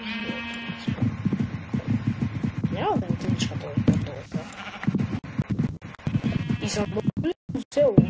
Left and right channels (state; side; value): identical; both; correlation 1.00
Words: Няма да ми тъничка този път. И съм добър до село.